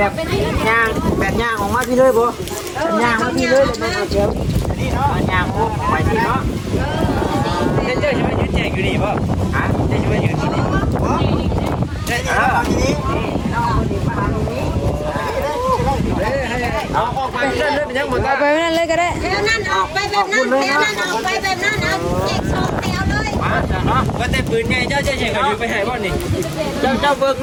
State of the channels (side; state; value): both; identical; correlation 1.00